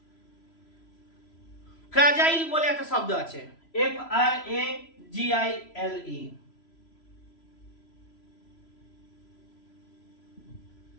ফ্রাজাইল বলে একটা শব্দ আছে, FRAGILE।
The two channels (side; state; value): right; late; 3.0 ms